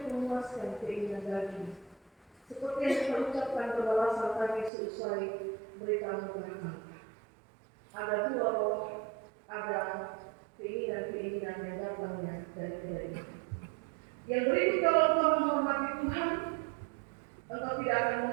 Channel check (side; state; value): left; drops out; at 4.7 s